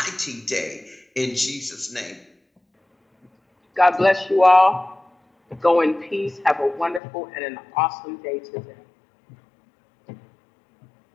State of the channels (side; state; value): right; drops out; at 7.0 s